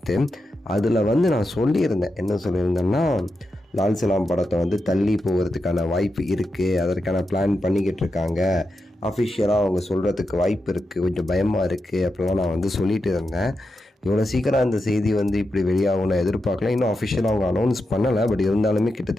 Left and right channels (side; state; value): both; normal; correlation 0.88